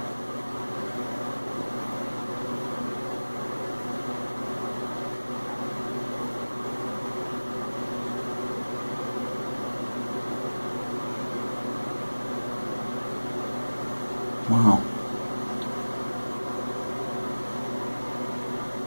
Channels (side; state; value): both; inverted; correlation -1.00